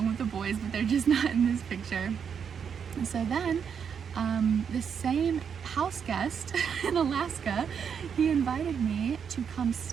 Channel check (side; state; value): left; quieter; 7.2 dB